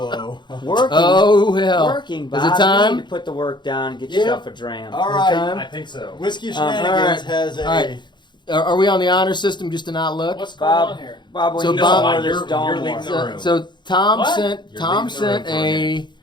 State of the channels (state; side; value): late; right; 0.22 ms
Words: Working. Oh, hell. Working, Bob. Is it You time? need to put the work down and get Yeah. yourself a dram. All right. time? I think so. Whiskey all Shenanigans right. has a. All right. Are we on the honor system just to not look? What's going Bob, on here? Bob, when So you Bob- order You're- this you're Dawn leaving War. the room. So Tom What? sent You're Tom leaving the room sent for a